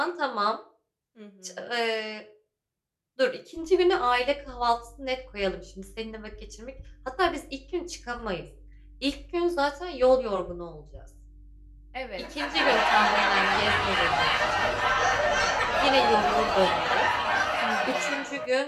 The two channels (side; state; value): both; identical; correlation 1.00